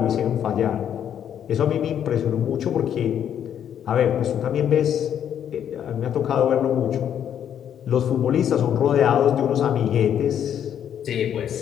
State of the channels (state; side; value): quieter; right; 9.4 dB